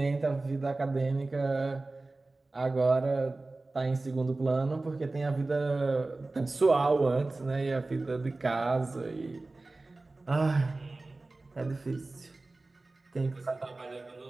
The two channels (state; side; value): quieter; left; 3.2 dB